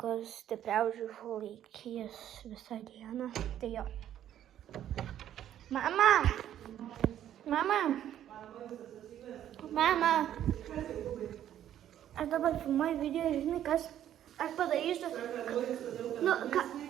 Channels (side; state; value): left; quieter; 11.1 dB